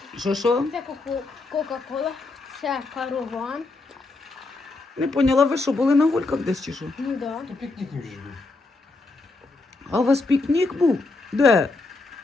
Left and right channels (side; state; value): right; quieter; 3.4 dB